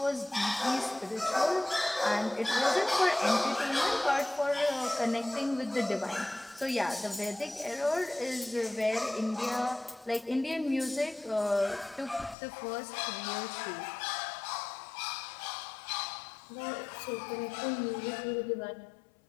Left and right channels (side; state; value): right; drops out; at 12.4 s